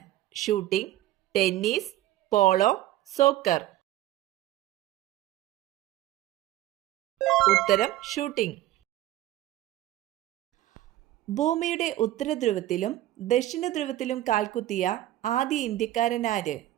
Shooting, tennis, polo, soccer. ഉത്തരം ഷൂട്ടിംഗ്. ഭൂമിയുടെ ഉത്തരധ്രുവത്തിലും ദക്ഷിണ ധ്രുവത്തിലും കാൽകുത്തിയ ആദ്യ ഇന്ത്യക്കാരനാര്?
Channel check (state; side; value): quieter; left; 14.5 dB